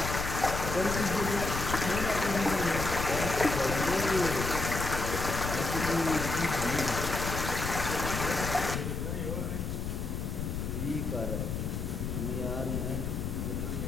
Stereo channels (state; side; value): noise; left; rumble, 3 dB below the sound